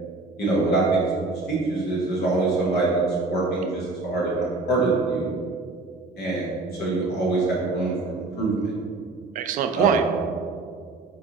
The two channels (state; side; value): quieter; left; 3.3 dB